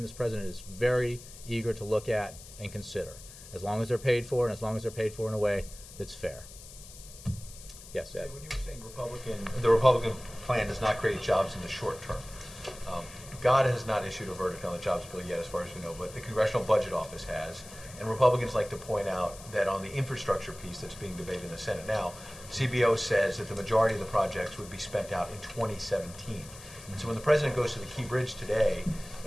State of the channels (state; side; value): noise; left; hiss, 17 dB below the sound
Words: this president is very eager to look at and consider, as long as they're paid for and as long as they're paid for in a way that's fair. Yes, Ed? When you were saying the Republican plan does not create jobs in the short term, God has not issued a verdict on the jobs bill yet, as far as we know, but the Congressional Budget Office has. And Republicans like to point out that on the infrastructure piece that's being debated in the Senate now, CBO says that the majority of the projects would be spent out in 2017. And so when the president goes to the Key Bridge today